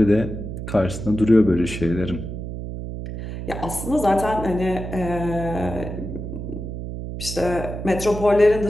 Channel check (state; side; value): noise; right; hum, 7 dB below the sound